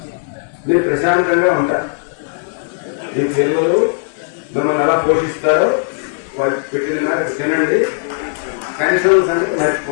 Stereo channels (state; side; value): silent; right; 62 dB below the other